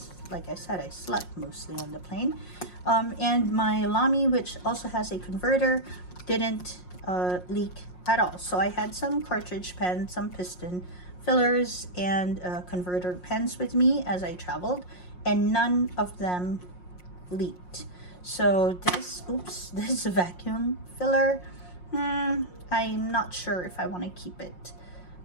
like I said, I slept mostly on the plane. And my Lamy, which also has a converter, didn't leak at all. So I had some cartridge pens, some piston fillers, and converter pens with me as I traveled, and none of them leaked. So this, oops, this vacuum filler, I'm not sure if I want to keep it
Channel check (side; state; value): right; late; 5.6 ms